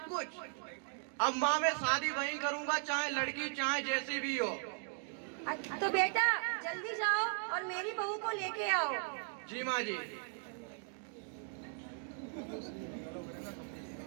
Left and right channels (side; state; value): left; silent; 53 dB below the other